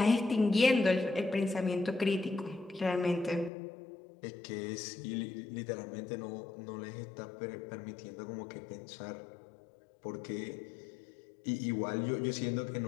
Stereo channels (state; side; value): drops out; right; at 3.5 s